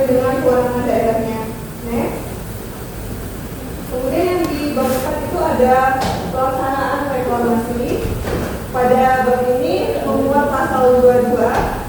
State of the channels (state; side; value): noise; right; hum, 20 dB below the sound